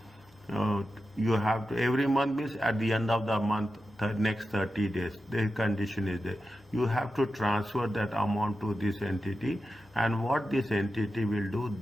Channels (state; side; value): normal; both; correlation 0.91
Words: every month means at the end of the month, the next 30 days, the condition is there. You have to transfer that amount to this entity, and what this entity will do,